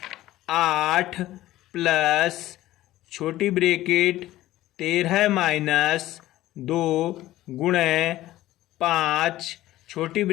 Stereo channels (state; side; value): quieter; right; 15.4 dB